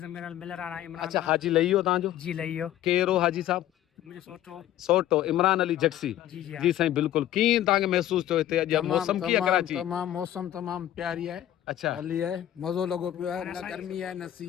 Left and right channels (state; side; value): quieter; right; 12.5 dB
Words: मेरा मिल रहा है इमरान अच्छा, हाजी लही वियो तव्हांजो? जी लइयो केरो हाजी साहब? मुझे सोचो सोटो इमरान अली जक्सी। जी जी जी साईं बिल्कुल। कीअं तव्हांखे महसूस थियो हिते अॼु मौसम कीअं कराची? तमाम मौसम तमाम प्यारी है। अच्छा, हली है, मज़ो लॻो पियो आहे। न गर्मी है न